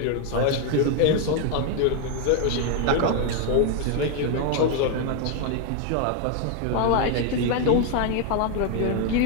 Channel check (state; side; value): different; both; correlation 0.00